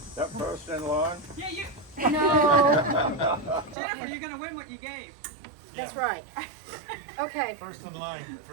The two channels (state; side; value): drops out; left; at 3.8 s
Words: That post in line? Yeah, you. No, Jennifer, you're gonna win what you gave. that's right. Okay, First in line